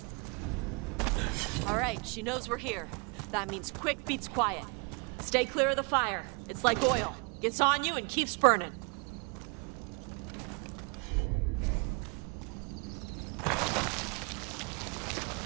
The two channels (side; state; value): left; quieter; 33.9 dB